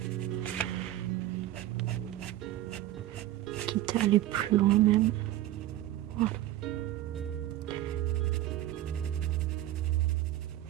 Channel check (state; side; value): quieter; left; 14.0 dB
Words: Quitte à aller plus loin même. Voilà.